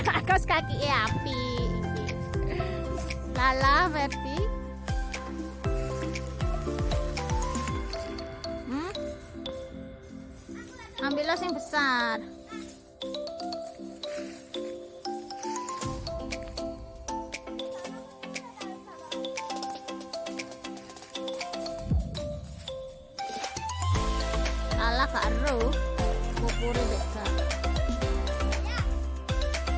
Kaos kaki api. Lala Verdi. Ambillah yang besar. Lala karo. Pupure beda.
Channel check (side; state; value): both; identical; correlation 1.00